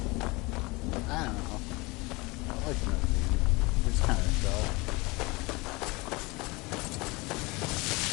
I don't know. I like Indonesia. It's kind of dull.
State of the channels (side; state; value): right; quieter; 24.7 dB